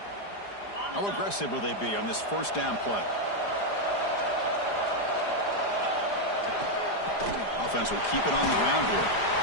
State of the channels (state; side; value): late; right; 4.9 ms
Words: How aggressive will they be on this first down play? Offense will keep it on the ground here.